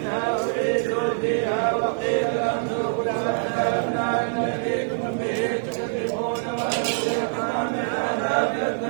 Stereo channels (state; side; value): silent; left; digital silence